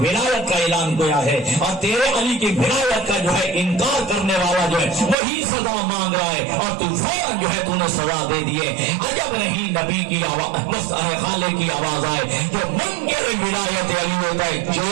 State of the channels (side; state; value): left; drops out; at 5.2 s